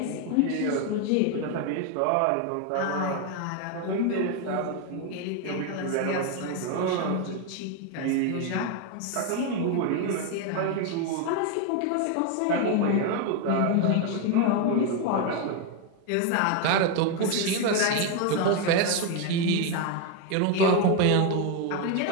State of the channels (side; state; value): both; different; correlation 0.01